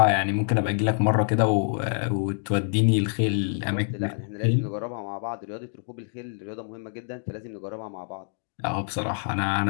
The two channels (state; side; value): silent; right; digital silence